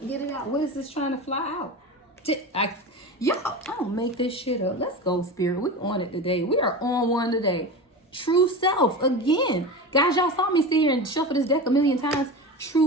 get it out. What is this trying to fly out? Y'all, I don't make this shit up. Let's go, Spirit. We're on it today. We are on one today. True self. Again. Guys, y'all saw me sit here and shuffle this deck a million times.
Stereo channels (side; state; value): both; normal; correlation 0.27